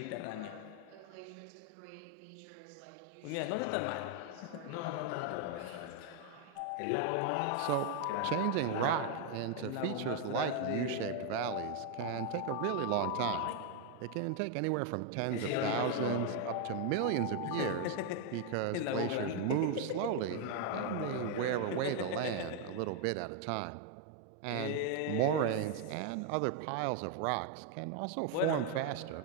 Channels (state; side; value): different; both; correlation 0.01